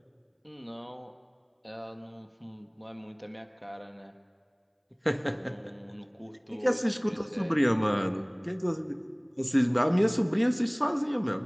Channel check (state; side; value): identical; both; correlation 1.00